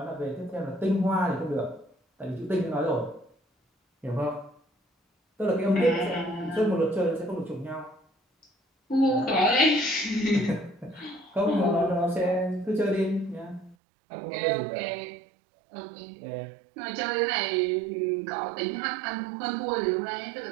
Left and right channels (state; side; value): drops out; left; at 13.8 s